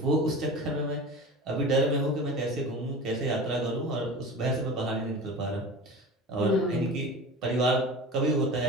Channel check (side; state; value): both; normal; correlation 0.34